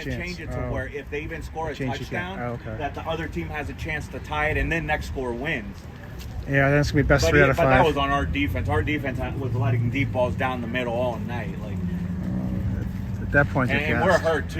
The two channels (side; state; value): both; identical; correlation 1.00